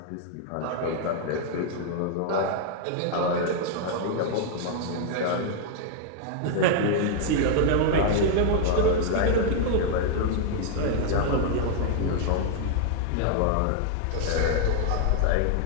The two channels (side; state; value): both; different; correlation 0.00